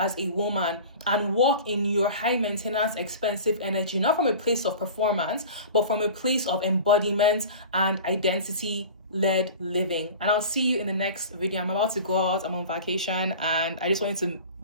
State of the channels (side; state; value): both; inverted; correlation -0.37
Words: a woman and walk in your high maintenance, expensive energy, not from a place of performance, but from a place of embodiment and identity led living. And I'll see you in the next video. I'm about to go out. I'm on vacation and I just wanted to